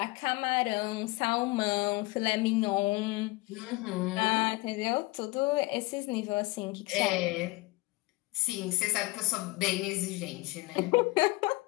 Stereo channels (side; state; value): right; quieter; 22.2 dB